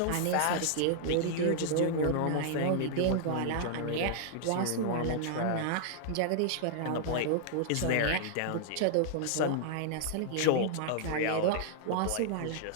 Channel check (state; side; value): different; both; correlation -0.01